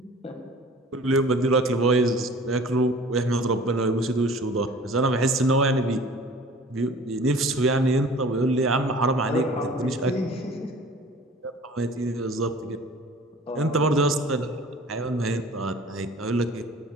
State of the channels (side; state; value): both; normal; correlation 0.46